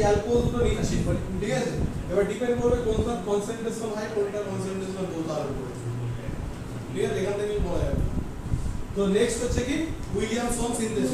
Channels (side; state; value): both; identical; correlation 1.00